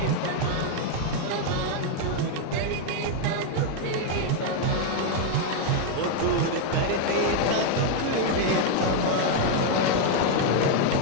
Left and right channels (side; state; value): both; different; correlation 0.00